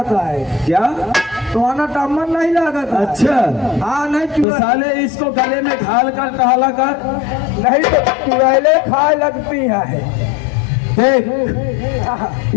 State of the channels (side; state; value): right; drops out; at 4.5 s